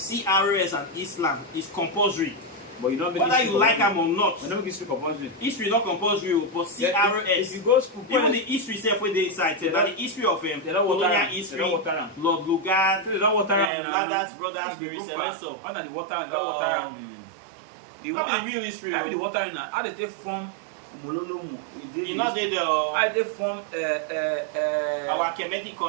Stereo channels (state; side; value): drops out; left; at 13.7 s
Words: and Islam is compulsory. But you don't make whether you like them or not. You don't make history compulsory. History not compulsory, but CRS. If you go school, even the history itself where they inside, that the history of colonial history, Lord Lugard, Ladders Brothers, Mary Celeste. Under the water and water. The real history. How the water in how they take form. You know they form our Kemetic